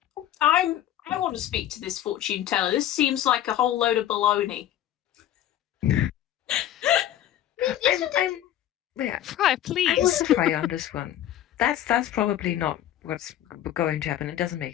I want to speak to this fortune teller. This seems like a whole load of baloney. Fry, please. I'm with Fry on this one. That's probably not what's going to happen. It doesn't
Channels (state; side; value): quieter; right; 12.0 dB